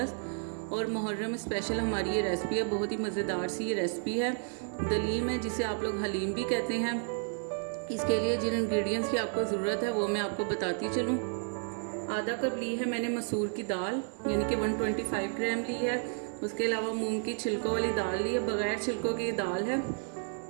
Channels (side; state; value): left; silent; 57 dB below the other